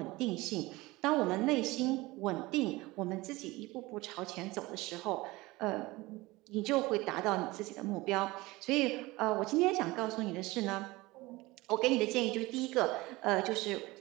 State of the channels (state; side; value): quieter; left; 20.8 dB